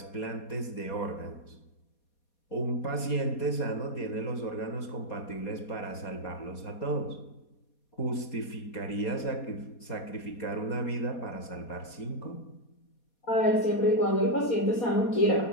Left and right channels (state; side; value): late; right; 4.2 ms